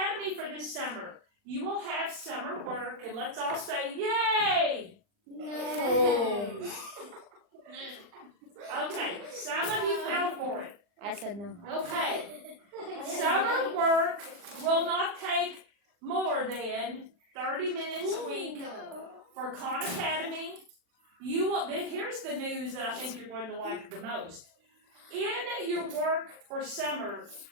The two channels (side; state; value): left; late; 40 ms